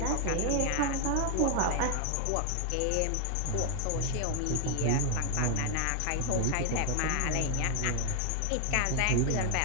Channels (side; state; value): both; different; correlation 0.00